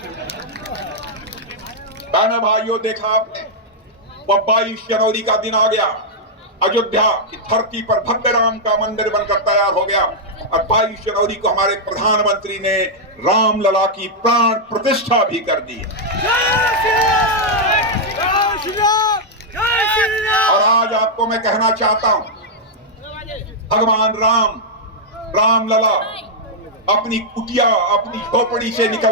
बहनों भाइयों, देखा आपने, वह 22 जनवरी का दिन आ गया, अयोध्या की धरती पर भव्य राम का मंदिर बनकर तैयार हो गया। और 22 जनवरी को हमारे प्रधानमंत्री ने राम लला की प्राण प्रतिष्ठा भी कर दी। और आज आपको मैं कहना चाहता हूं, भगवान राम, राम लला अपनी कुटिया, अपनी झोपड़ी से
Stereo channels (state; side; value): normal; both; correlation -0.04